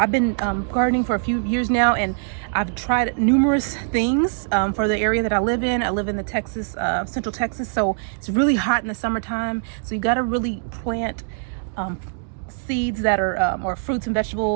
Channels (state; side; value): silent; left; digital silence